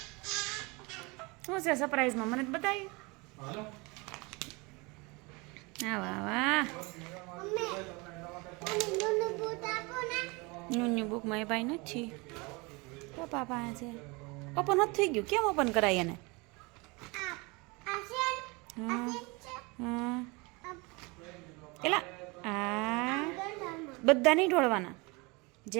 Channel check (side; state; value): left; quieter; 26.9 dB